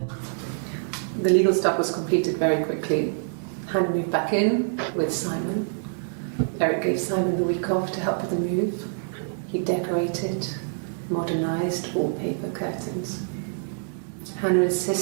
The legal stuff was completed very quickly. Hannah moved back in with Simon. Eric gave Simon the week off to help with the move. He decorated, modernised wallpaper, curtains. Hannah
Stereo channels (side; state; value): left; silent; digital silence